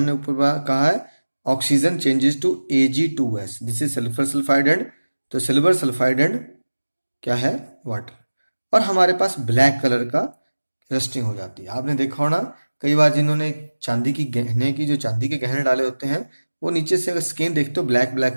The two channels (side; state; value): both; inverted; correlation -1.00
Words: ऊपर कहा है, oxygen changes to Ag2S. This is sulphur sulphide and, तो सिल्वर सल्फाइड एंड क्या है? वाटर. और हमारे पास ब्लैक कलर का रस्टिंग हो जाती है. आपने देखा होना कई बार जिन्होंने चांदी के गहने डाले होते हैं, वो नीचे से अगर स्किन देखते हो ब्लैक ब्लैक